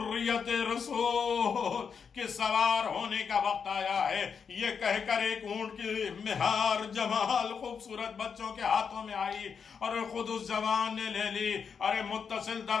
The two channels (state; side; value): quieter; right; 6.4 dB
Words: رسول کے سوار ہونے کا وقت آیا ہے۔ یہ کہہ کر ایک اونٹ کی مہار جمال خوبصورت بچوں کے ہاتھوں میں آئی اور خود اس جوان نے لے لی، ارے متصل